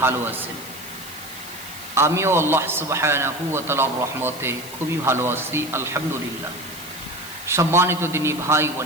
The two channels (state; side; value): noise; left; hiss, 14 dB below the sound